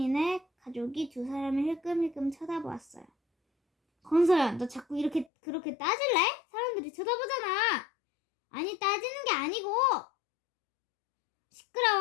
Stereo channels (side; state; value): right; drops out; at 5.3 s